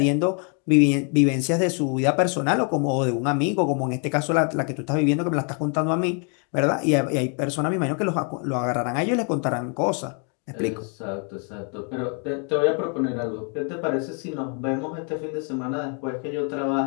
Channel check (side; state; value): right; quieter; 39.4 dB